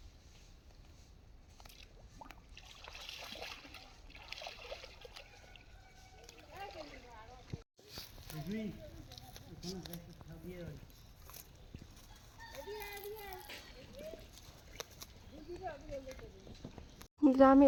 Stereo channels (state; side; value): identical; both; correlation 1.00